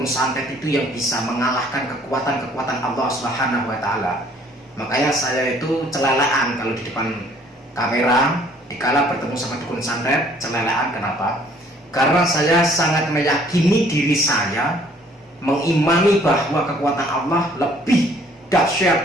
santet itu yang bisa mengalahkan kekuatan-kekuatan Allah Subhanahu wa Ta'ala. Makanya saya itu celelaan kalau di depan kamera, dikala bertemu sama dukun santet, celelaan. Kenapa? Karena saya sangat meyakini diri saya, mengimani bahwa kekuatan Allah lebih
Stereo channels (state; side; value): normal; both; correlation 0.59